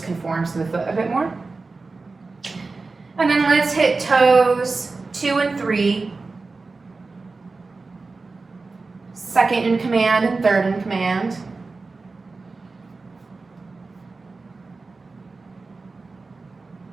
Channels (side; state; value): left; quieter; 3.9 dB